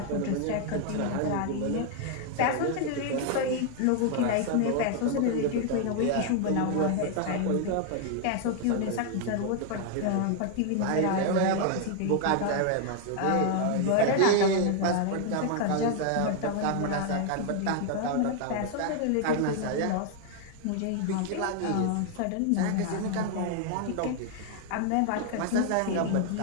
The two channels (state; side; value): different; both; correlation 0.00